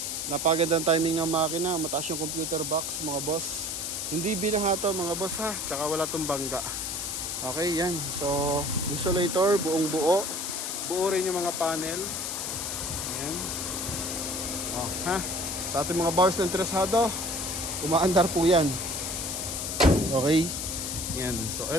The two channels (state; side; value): noise; left; hiss, 3 dB below the sound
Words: Napagandang timing ng makina, mataas yung computer box mga boss. Hindi binahato mga boss ha, tsaka wala tong bangga. Okay, yan. So, insulator, buong buo. Buo rin yung mga panel. Ayan. Ha? Sa ating mga bars na interesado, umaandar po yan. Okay. Yan. So,